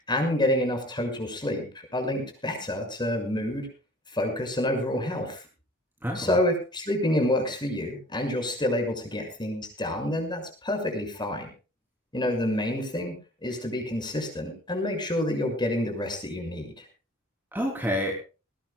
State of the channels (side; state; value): both; normal; correlation 0.49